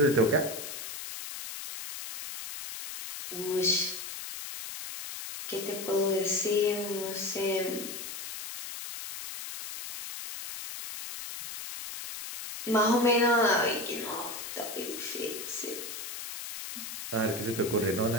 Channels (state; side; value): noise; left; hiss, 8 dB below the sound